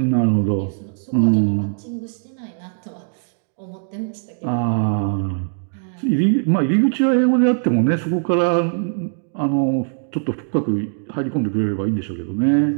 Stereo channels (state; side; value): silent; left; 63 dB below the other